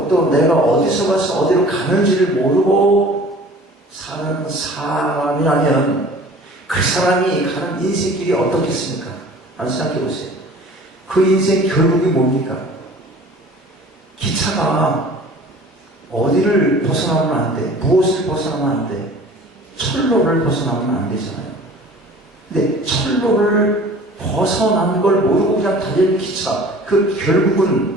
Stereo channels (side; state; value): both; normal; correlation 0.46